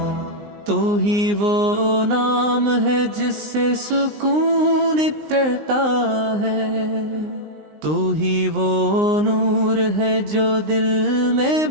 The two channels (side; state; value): left; late; 19 ms